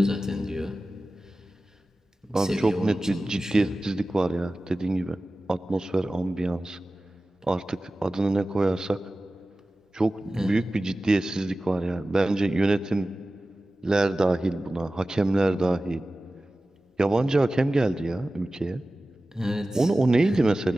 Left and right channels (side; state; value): both; normal; correlation 0.96